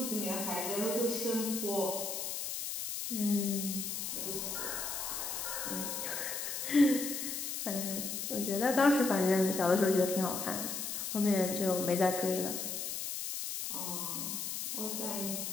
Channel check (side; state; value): left; noise; hiss, 4 dB below the sound